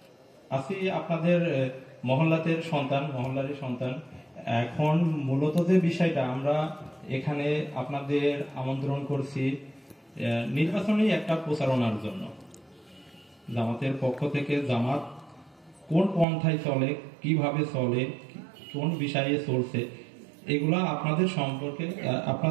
আছি আপনাদের মহল্লারই সন্তান। এখন মূলত যে বিষয়টা আমরা এখানে আপনাদের আমন্ত্রণ করছি নির্বাচনী একটা প্রচারণার জন্য। জামাতের পক্ষ থেকে জামাত কোন পন্থায় চলে, কিভাবে চলে, কোন বিষয়ে চলছে, এগুলা আপনাদের সম্পর্কে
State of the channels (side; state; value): left; drops out; at 16.2 s